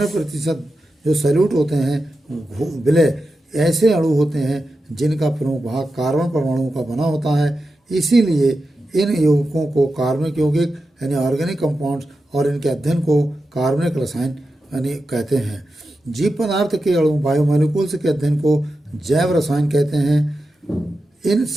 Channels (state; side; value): normal; both; correlation 0.90